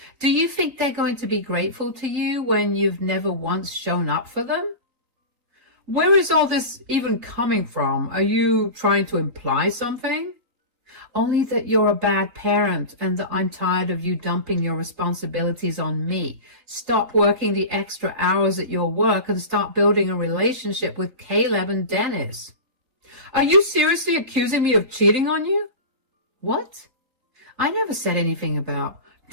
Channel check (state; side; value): late; left; 3.9 ms